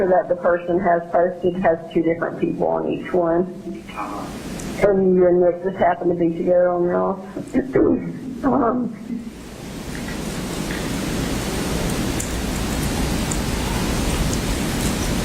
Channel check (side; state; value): both; identical; correlation 1.00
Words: that the person has posted has 2 different people on each one. And you and Nick just happen to be together on yours.